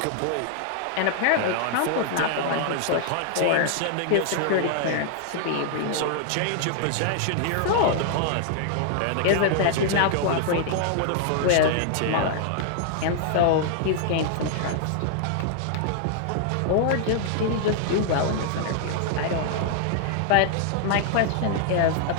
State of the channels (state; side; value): different; both; correlation -0.01